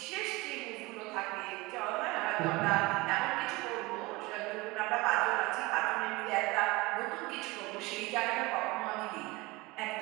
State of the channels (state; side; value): quieter; left; 22.7 dB